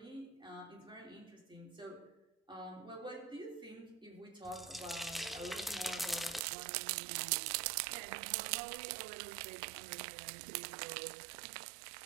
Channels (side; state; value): left; drops out; at 6.5 s